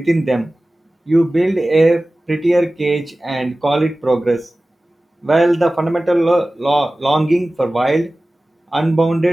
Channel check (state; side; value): normal; both; correlation 0.97